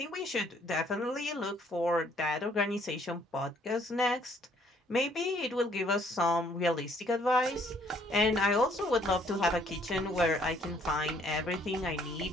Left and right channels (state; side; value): normal; both; correlation 0.64